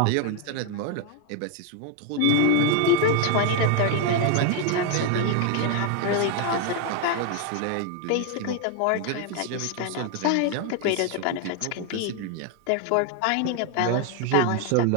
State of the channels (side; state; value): both; different; correlation 0.01